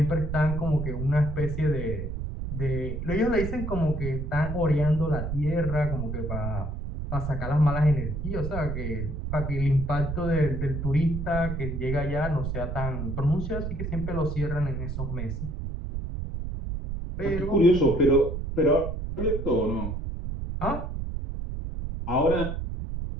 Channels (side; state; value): right; noise; rumble, 4 dB below the sound